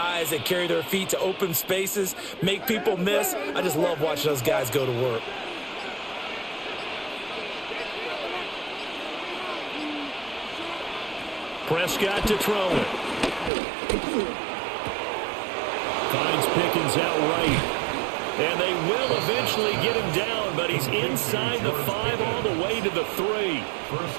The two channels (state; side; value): drops out; left; at 13.5 s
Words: that carry their feet to open spaces, make people miss. I just love watching those guys go to work. Prescott to throw it. Finds Pickens out right. And they will eventually get him down, but he's inside the 5 all the way to the 3.